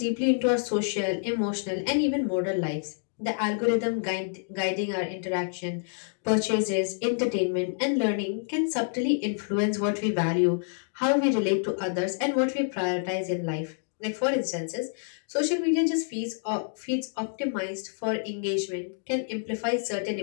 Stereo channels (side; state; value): right; silent; digital silence